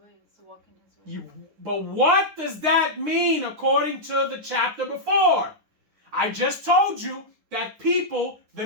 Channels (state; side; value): late; left; 9.8 ms